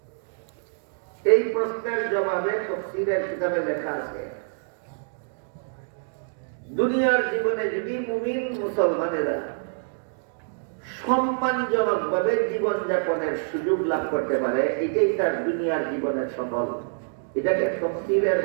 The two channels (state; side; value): silent; left; digital silence